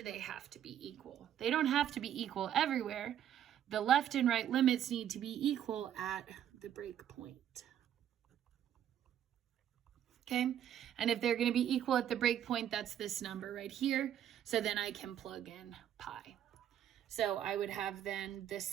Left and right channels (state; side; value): quieter; left; 10.3 dB